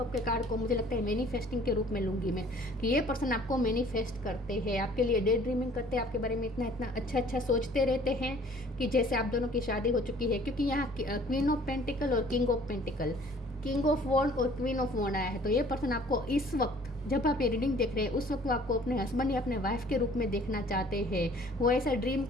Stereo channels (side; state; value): both; normal; correlation 0.54